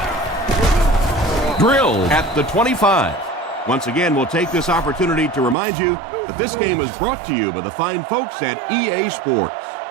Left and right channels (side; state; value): left; drops out; at 5.6 s